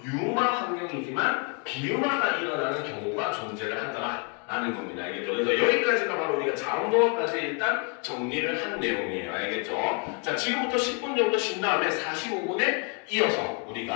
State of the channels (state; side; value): quieter; right; 34.6 dB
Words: 유마 환경이지만 비유마가 일어나는 경우가 존재를 하더라. 라는 겁니다. 알겠죠? 그래서 여기까지가 바로 우리가 자음동어까지 일단 정리를 한 내용이에요. 알겠죠? 자, 지금부터 10분 정도 쉰 다음에 45분에 이어서